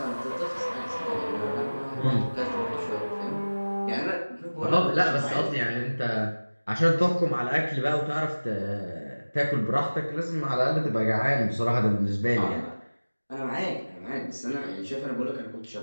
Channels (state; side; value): inverted; both; correlation -1.00